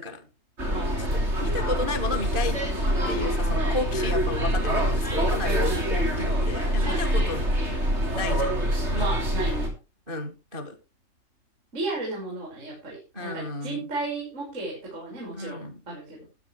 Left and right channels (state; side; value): late; left; 3.3 ms